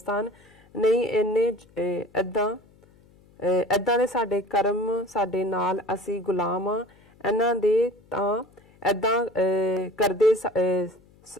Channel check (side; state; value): left; noise; hum, 29 dB below the sound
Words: ਨਹੀਂ ਇਹਨੇ ਏਦਾਂ ਦੇ ਸਾਡੇ ਕਰਮ ਸਾਡੇ ਨਾਲ, ਅਸੀਂ ਗੁਲਾਮ ਆ ਇਹਨਾਂ ਦੇ, ਤਾਂ ਏਦਾਂ ਕਰਦੇ